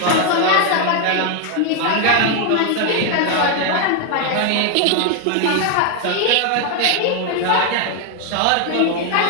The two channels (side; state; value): both; different; correlation 0.01